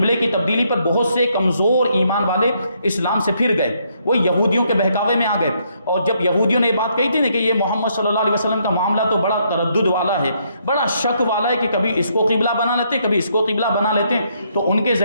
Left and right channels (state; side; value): inverted; both; correlation -0.73